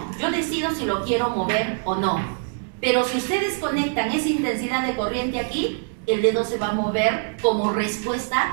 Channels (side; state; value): left; silent; digital silence